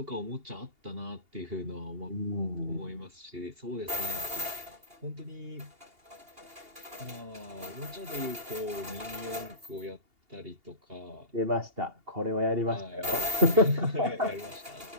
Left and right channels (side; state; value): left; late; 2.8 ms